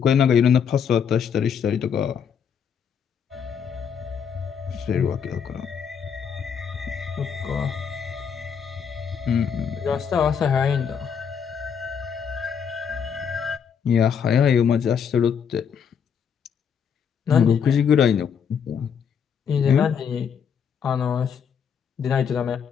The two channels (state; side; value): quieter; right; 7.3 dB